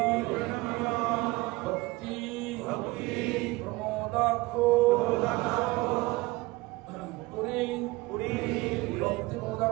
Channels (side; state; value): left; quieter; 21.9 dB